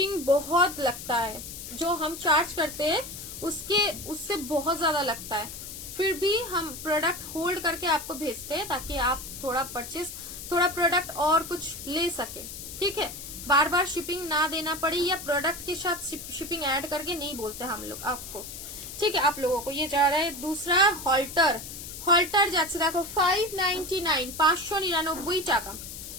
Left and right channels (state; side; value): noise; left; hiss, 10 dB below the sound